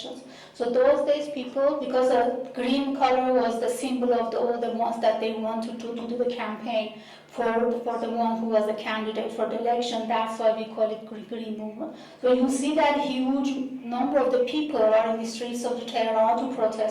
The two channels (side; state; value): both; identical; correlation 1.00